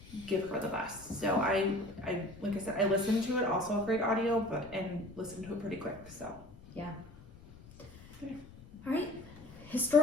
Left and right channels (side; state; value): left; noise; rumble, 20 dB below the sound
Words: give her the best. So I like I said, I listened to it, also a great audio, and listened to it pretty quick. So Yeah. All right.